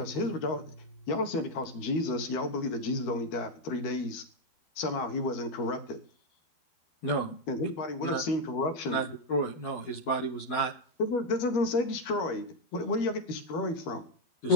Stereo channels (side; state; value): right; late; 13 ms